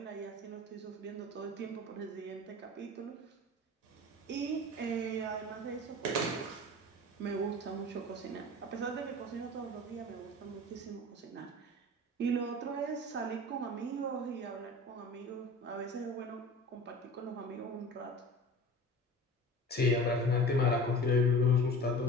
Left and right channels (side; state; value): both; normal; correlation 0.38